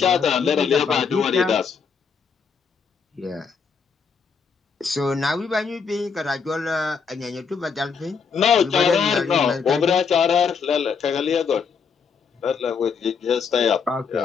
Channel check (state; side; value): quieter; right; 5.8 dB